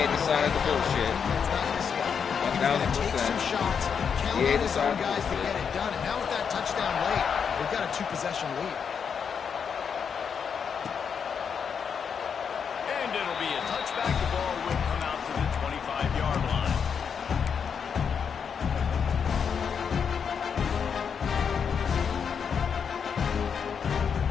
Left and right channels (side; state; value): right; quieter; 6.8 dB